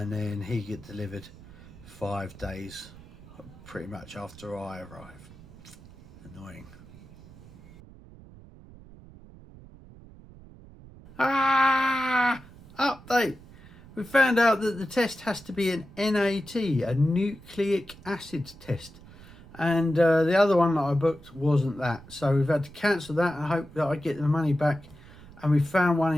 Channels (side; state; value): right; noise; rumble, 20 dB below the sound